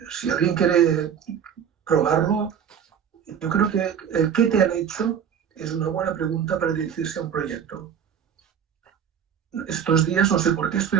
si alguien quiere probarlo, yo creo que el qué te han hecho es una buena pregunta para dirigirse a un proyecto. Estos días, no sé por qué,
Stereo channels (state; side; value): quieter; left; 8.1 dB